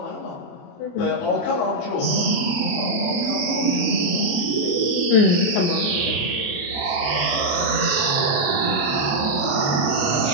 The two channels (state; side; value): late; right; 28 ms